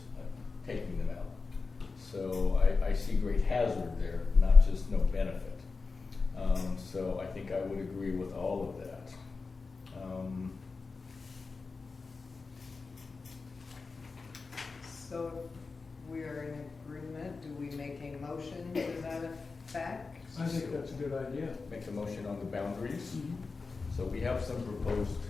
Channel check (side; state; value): right; quieter; 4.3 dB